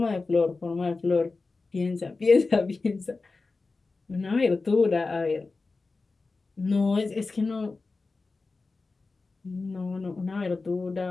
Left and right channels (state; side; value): quieter; right; 3.8 dB